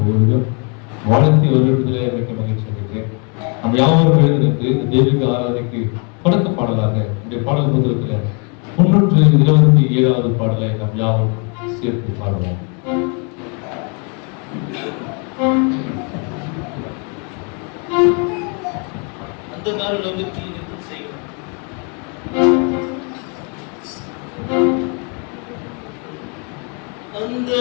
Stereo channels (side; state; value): right; quieter; 36.3 dB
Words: வாழ்த்தி வருவதில் மிக்க மகிழ்ச்சி அடைகிறேன். நம்ம யாவரும் எழுதிருக்கு இந்த தெய்வீக ஆராதனைக்கு தொடக்க பாடலாக இந்த பாடல் புத்தகத்தில் 327வது பாடலை நாம் யாவும் சேர்த்து பாடுவோம். அந்த நாள் உலகத்தில் நின்று செய்வோம். அந்த